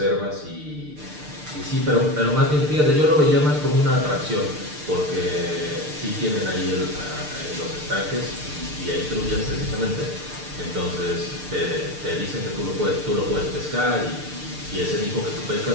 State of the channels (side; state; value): left; late; 6.7 ms